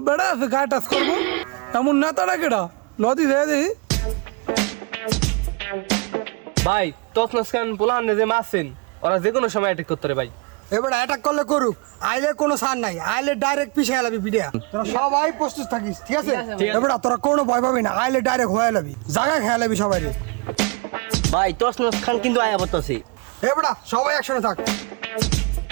বেড়া আছে গায়ে টাচ করবো এমন নেতাটা কেটা লদি দেয় দেখি ভাই তসনস খান পোলান যে মারছেন ওরা যে কোনো সময় অ্যাটাক করতে পারে ভাই। এবার অ্যাটাক করলে করুক, আইলে কোনো সার নাই, আইলে ডাইরেক্ট পিছিয়ে গেলাবি ভিডিও। তোরা সবাই প্রস্তুত থাকিস, ঠিক আছে? এবার তোরা কোনো ভয় পাবি না, আইলে ডাইরেক্ট হয়ে যাবি, জায়গা খেয়ে যাবি সবাই। ভাই তসনস খান কিন্তু আয়া বলতাছে। এবার সবাই একসঙ্গে থাক।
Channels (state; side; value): quieter; left; 29.8 dB